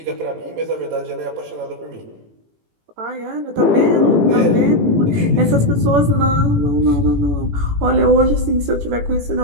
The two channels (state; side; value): late; left; 18 ms